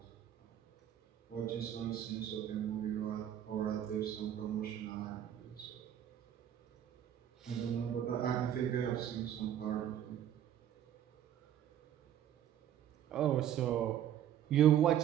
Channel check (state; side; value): quieter; left; 10.6 dB